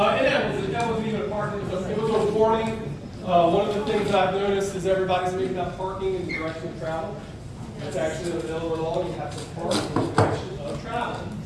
that wasn't even a parking, it was a warning. One of the things I've noticed is everybody's making up parking in the direction of travel. It's actually in the middle of the law, you have to park in the direction of travel.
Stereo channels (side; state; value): both; identical; correlation 1.00